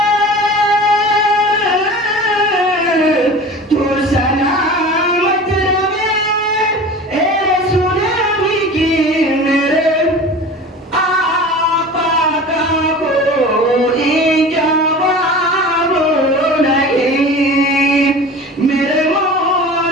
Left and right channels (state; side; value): normal; both; correlation 0.37